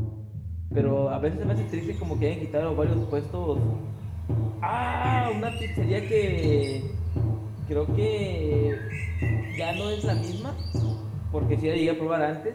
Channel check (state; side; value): identical; both; correlation 1.00